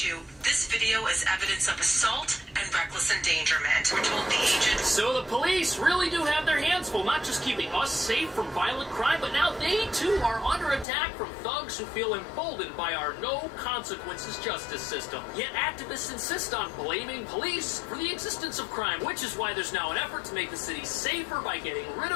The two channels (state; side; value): drops out; right; at 10.9 s